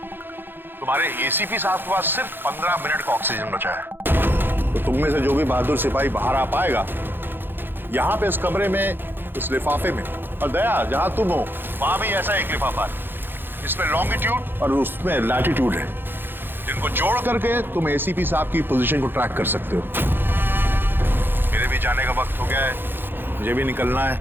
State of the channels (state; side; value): late; left; 0.10 ms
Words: तुम्हारे एसीपी साहब के पास सिर्फ 15 मिनट का ऑक्सीजन बचा है। तो तुम में से जो भी बहादुर सिपाही बाहर आ पाएगा, यहाँ पे इस कमरे में, इस लिफाफे में, और दया जहां तुम हो वहां भी ऐसा एक लिफाफा है, इसमें लॉन्गिट्यूड और उसमें लैटिट्यूड है, जिनको जोड़ करके तुम एसीपी साहब की पोजीशन को ट्रैक कर सकते हो। मेरे भी जाने का वक्त हो गया है, मुझे भी निकलना है।